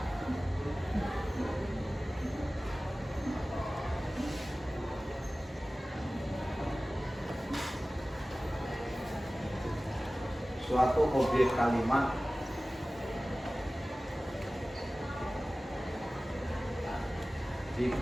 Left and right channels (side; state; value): both; normal; correlation 0.97